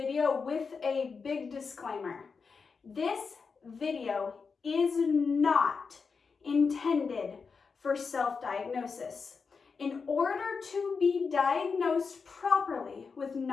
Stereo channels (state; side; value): quieter; right; 5.2 dB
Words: with a big disclaimer. This video is not intended for self-diagnosis. In order to be diagnosed properly with